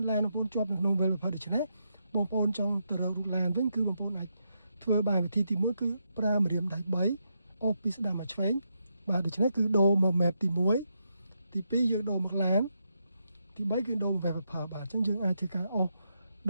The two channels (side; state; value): both; inverted; correlation -0.82